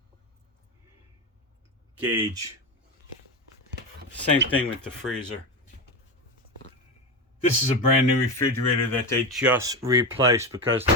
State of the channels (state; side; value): normal; both; correlation 0.18